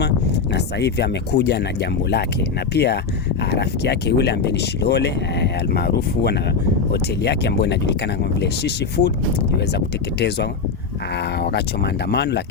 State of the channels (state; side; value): quieter; right; 5.1 dB